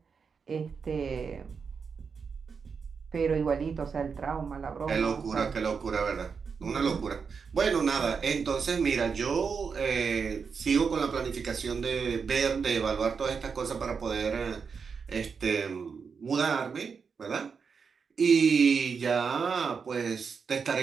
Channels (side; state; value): left; quieter; 5.8 dB